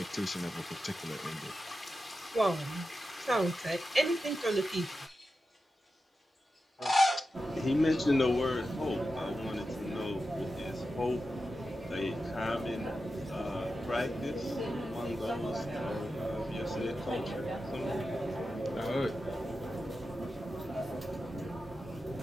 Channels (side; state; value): both; normal; correlation 0.91